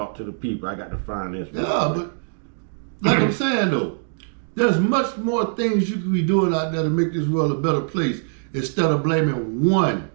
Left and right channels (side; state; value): left; silent; digital silence